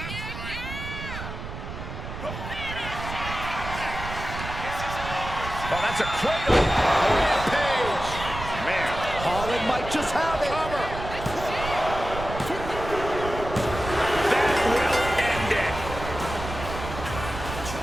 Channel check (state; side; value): noise; right; rumble, 8 dB below the sound